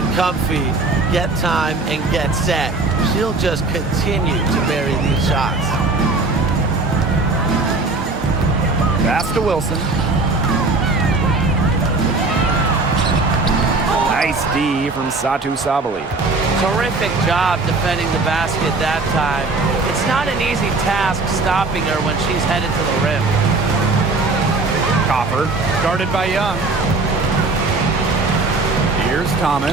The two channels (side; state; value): left; quieter; 3.5 dB